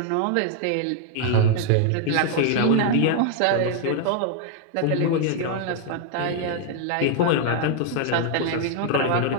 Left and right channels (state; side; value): different; both; correlation 0.00